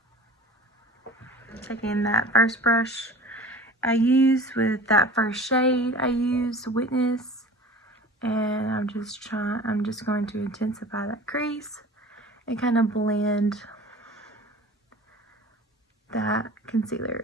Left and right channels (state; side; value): normal; both; correlation 0.41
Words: Taking that first brush I used with that first shade I used, Witness, and I'm just going to intensify that crease and kind of blend that concealer